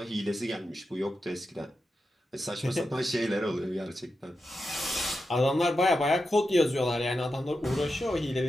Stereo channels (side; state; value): both; normal; correlation 0.89